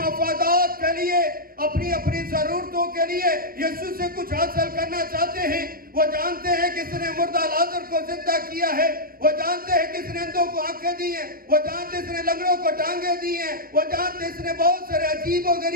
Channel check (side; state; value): left; late; 0.42 ms